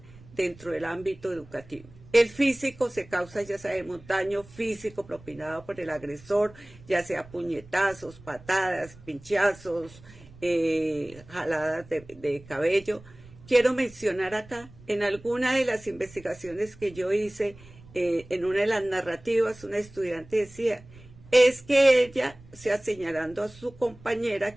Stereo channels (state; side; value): noise; right; rumble, 22 dB below the sound